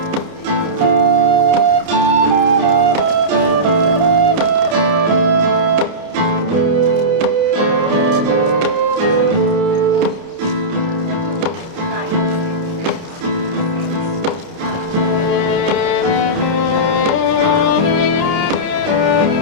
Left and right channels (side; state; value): left; late; 29 ms